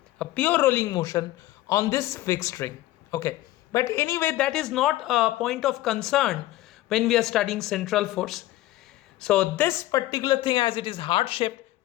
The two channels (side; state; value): right; quieter; 16.1 dB